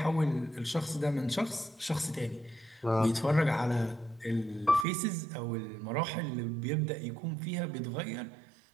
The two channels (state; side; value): drops out; left; at 4.9 s